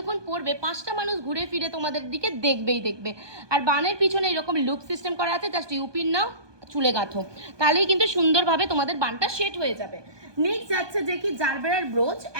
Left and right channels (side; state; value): left; late; 1.2 ms